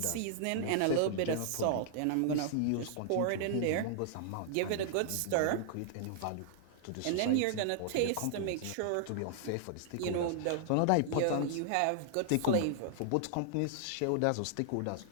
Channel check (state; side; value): different; both; correlation -0.01